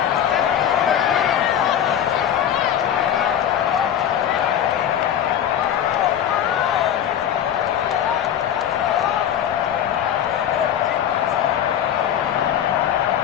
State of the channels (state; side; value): quieter; right; 9.8 dB